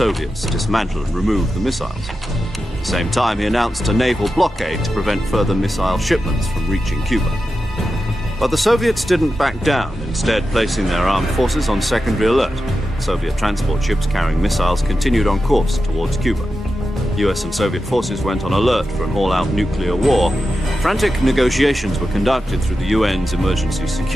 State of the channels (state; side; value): normal; both; correlation 0.91